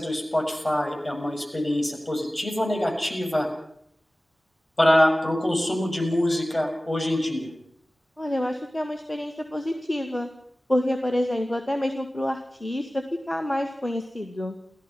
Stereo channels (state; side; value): normal; both; correlation 0.97